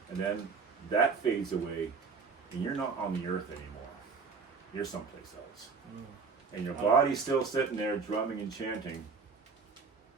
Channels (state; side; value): quieter; left; 5.1 dB